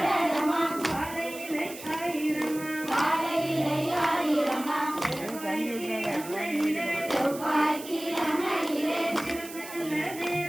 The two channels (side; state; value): right; noise; hiss, 14 dB below the sound